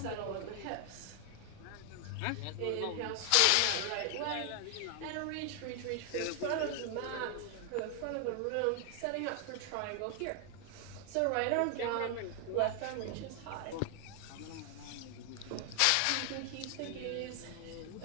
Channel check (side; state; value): both; different; correlation 0.00